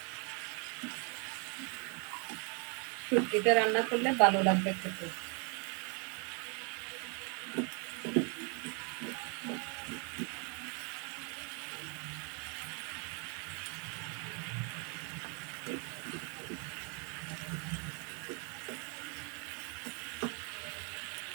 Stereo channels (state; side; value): quieter; left; 35.5 dB